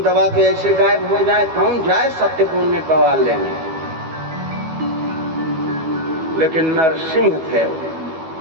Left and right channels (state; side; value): late; left; 12 ms